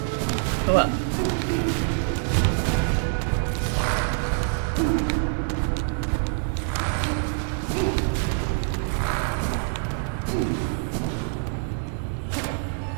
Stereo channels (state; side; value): silent; left; 57 dB below the other